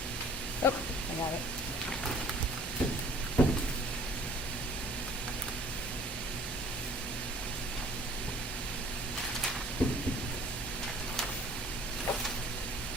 Oh, I got it.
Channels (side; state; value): both; normal; correlation 0.53